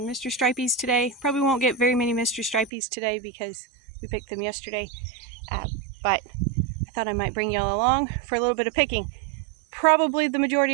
Mr. Stripey's today. Probably won't get very many Mr. Stripey's today because we picked them yesterday. But I thought I might bring y'all along for a little bit of picking. Probably the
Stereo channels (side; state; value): left; drops out; at 2.7 s